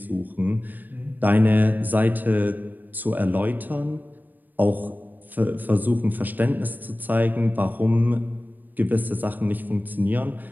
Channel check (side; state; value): left; late; 0.088 ms